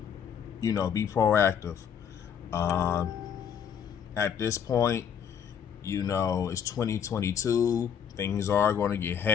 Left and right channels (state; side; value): quieter; right; 8.1 dB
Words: be proactive. At this point, it's 2022. things are going to get